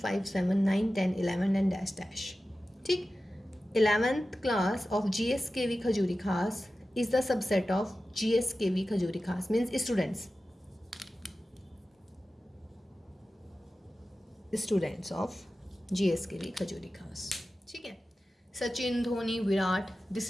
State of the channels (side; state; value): both; normal; correlation 0.94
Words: 7 9 10 11 and dash dash, ठीक। 11th class of GSKV Khajuri Khas is the subset of GSKV Khajuri Khas, means students of GSKV Khajuri Khas, ठीक है। Sachin, Dhoni, Virat, this